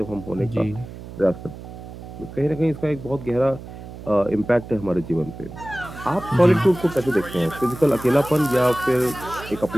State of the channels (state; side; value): noise; right; hum, 13 dB below the sound